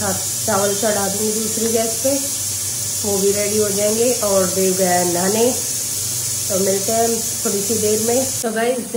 चावल चढ़ा दूँगी दूसरी गैस पे, वो भी रेडी हो जाएंगे। और देव गया नहाने, तो मिलते हैं थोड़ी सी देर में। तो गाइस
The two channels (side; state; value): both; identical; correlation 1.00